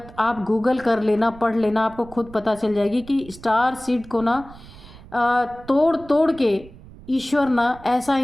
आप गूगल कर लेना, पढ़ लेना, आपको खुद पता चल जाएगी कि स्टार सीड को ना तोड़ तोड़ के ईश्वर ना ऐसा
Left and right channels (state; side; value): noise; right; rumble, 20 dB below the sound